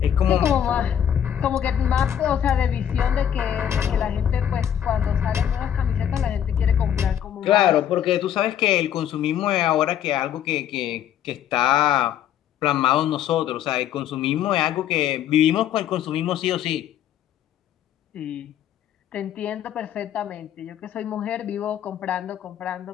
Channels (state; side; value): quieter; right; 9.9 dB